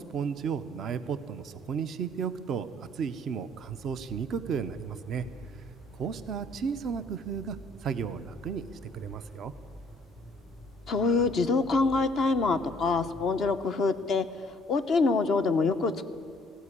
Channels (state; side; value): normal; both; correlation 0.60